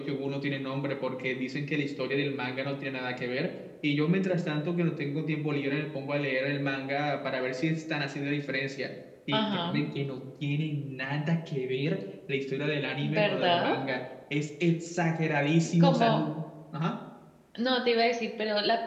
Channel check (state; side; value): identical; both; correlation 1.00